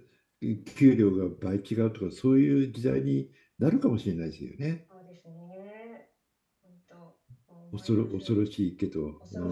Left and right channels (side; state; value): both; identical; correlation 1.00